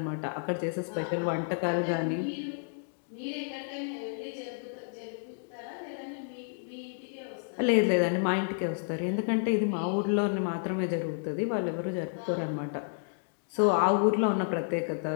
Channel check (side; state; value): right; silent; digital silence